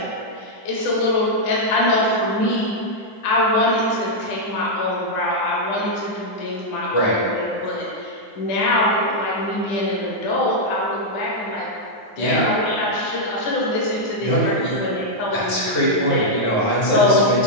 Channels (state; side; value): late; right; 9.6 ms